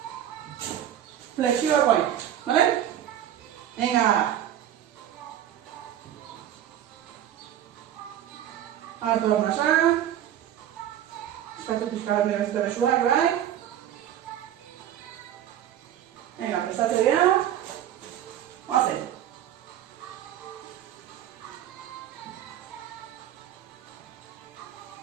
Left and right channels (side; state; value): left; quieter; 11.1 dB